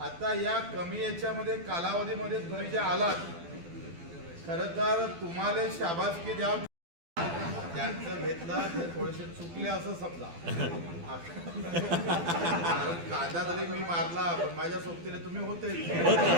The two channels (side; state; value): left; late; 12 ms